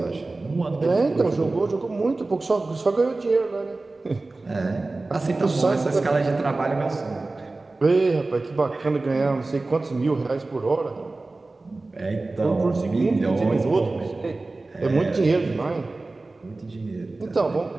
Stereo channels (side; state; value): left; quieter; 3.3 dB